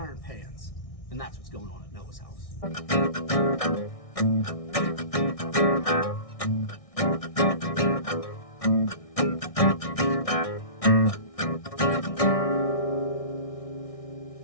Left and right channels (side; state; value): right; late; 1.6 ms